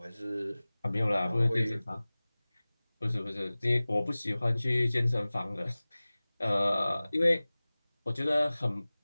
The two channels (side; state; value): both; inverted; correlation -0.99